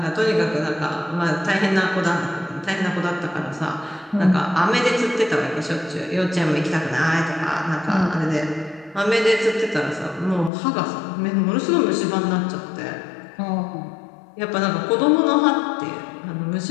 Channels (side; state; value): right; drops out; at 10.5 s